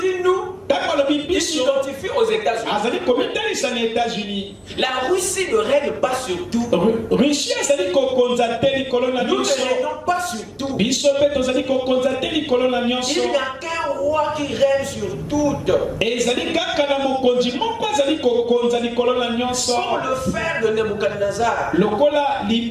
dit nous, ntango alobi il biso s'identifie aux États-Unis. azali komitalisa na États-Unis. La Russie ne règne pas sur tout. Russie azali kokonza te likolo na Nous ne nyonso. régnons pas sur tout. biso mpe tozali kokonza te likolo na nyonso. Il n'y a qu'un roi qui règne sur tout. ezali kaka na mokonzi moko azali kokonza likolo na nyonso. Comme le frère de Nebuchadnezzar, lokola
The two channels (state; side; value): identical; both; correlation 1.00